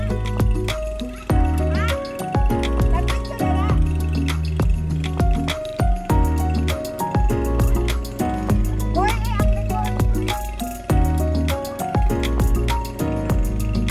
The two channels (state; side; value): identical; both; correlation 1.00